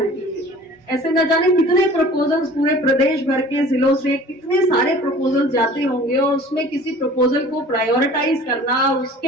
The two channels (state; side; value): normal; both; correlation 0.46